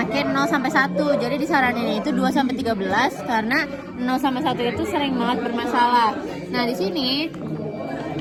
makin 0 sampai 1. Jadi disaranin itu 2 sampai 13 karena 0 sampai 1 itu sering banget bermasalah. Nah, di sini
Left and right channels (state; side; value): identical; both; correlation 1.00